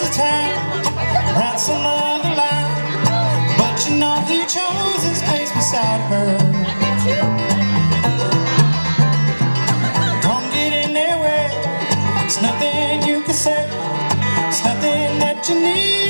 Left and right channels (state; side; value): inverted; both; correlation -1.00